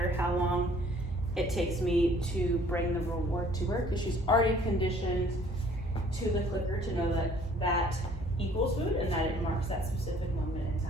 how long it takes me to bring the reward to her because she's already conditioned to the clicker to know that that equals food and that it marks that specific moment in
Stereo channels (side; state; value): both; normal; correlation 0.56